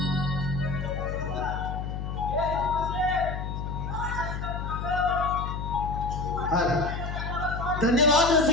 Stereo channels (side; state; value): left; noise; hum, 4 dB below the sound